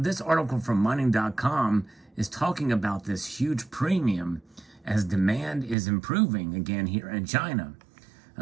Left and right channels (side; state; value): left; drops out; at 5.8 s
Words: article from mining.com is talking about this huge premium as demand is improving again here in China.